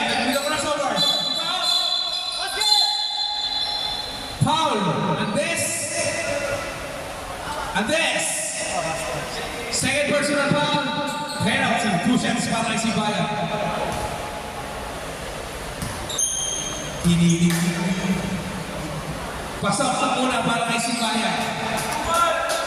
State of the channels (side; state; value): both; identical; correlation 1.00